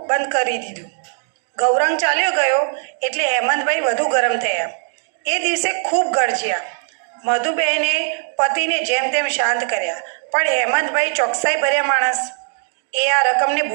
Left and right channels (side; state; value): left; silent; digital silence